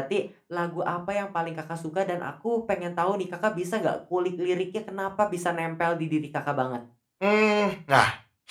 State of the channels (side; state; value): both; identical; correlation 1.00